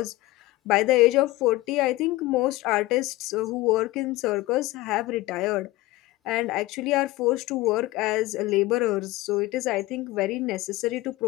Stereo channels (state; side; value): quieter; right; 18.6 dB